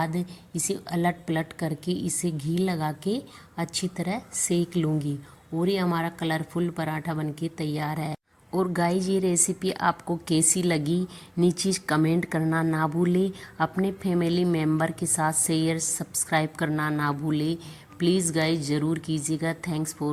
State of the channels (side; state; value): both; identical; correlation 1.00